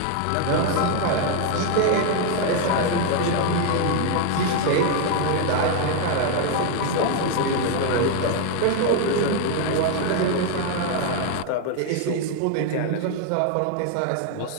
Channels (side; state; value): both; different; correlation 0.01